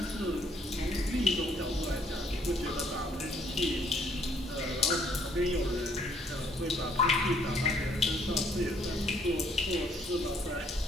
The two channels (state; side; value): normal; both; correlation 0.65